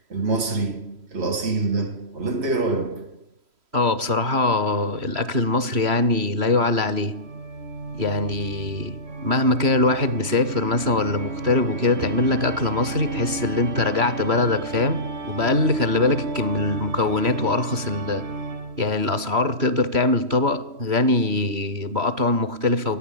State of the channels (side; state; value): left; late; 3.0 ms